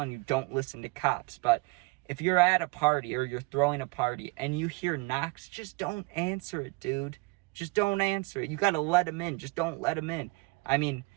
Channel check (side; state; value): left; quieter; 26.8 dB